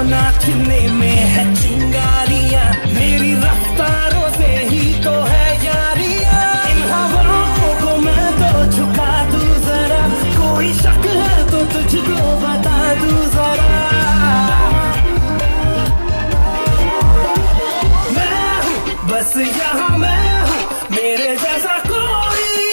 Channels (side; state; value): both; inverted; correlation -1.00